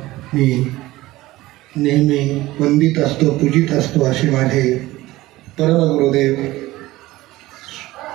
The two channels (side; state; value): left; quieter; 17.9 dB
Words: मी नेहमी वंदित असतो पूजित असतो असे माझे परमगुरुदेव